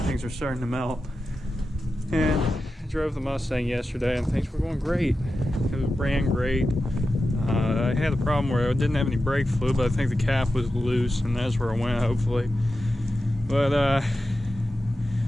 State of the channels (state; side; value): normal; both; correlation 0.92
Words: are starting to melt. And I drove the Mustang yesterday, and things were going great. It ran great. I had a problem where I didn't have any brake fluid, but I think the cap was loose, and that's where I went, hopefully. But